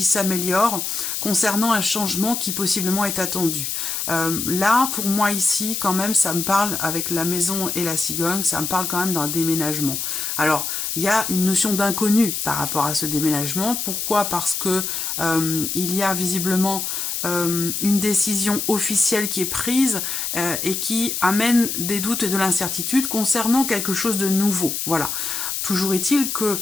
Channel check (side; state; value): left; noise; hiss, 3 dB below the sound